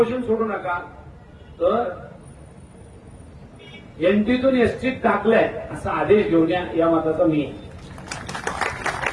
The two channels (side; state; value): both; identical; correlation 1.00